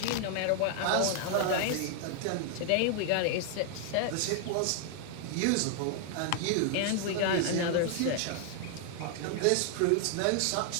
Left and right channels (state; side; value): different; both; correlation 0.00